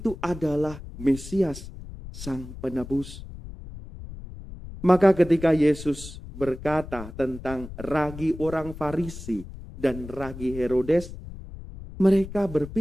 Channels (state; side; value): noise; left; rumble, 13 dB below the sound